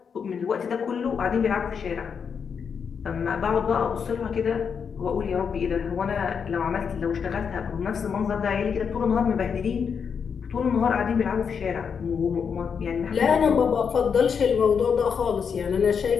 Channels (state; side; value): quieter; right; 6.6 dB